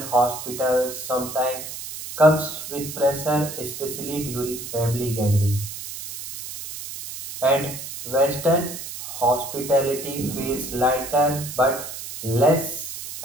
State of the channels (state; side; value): noise; right; hiss, 9 dB below the sound